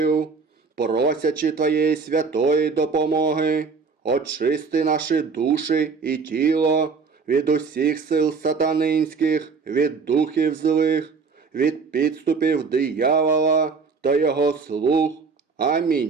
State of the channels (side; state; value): left; quieter; 5.0 dB